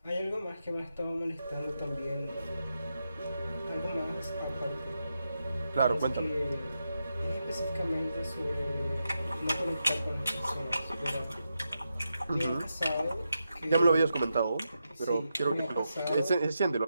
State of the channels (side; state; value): both; inverted; correlation -0.86